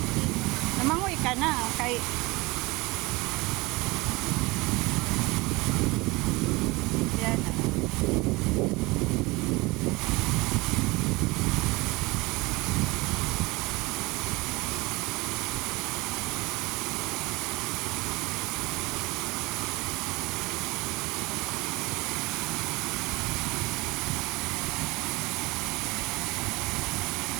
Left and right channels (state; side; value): quieter; left; 23.4 dB